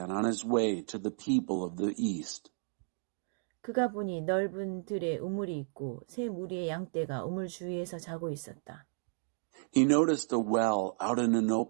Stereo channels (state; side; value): silent; left; 56 dB below the other